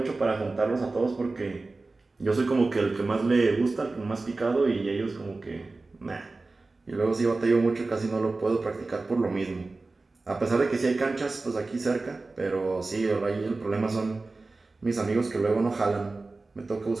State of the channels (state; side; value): quieter; left; 3.5 dB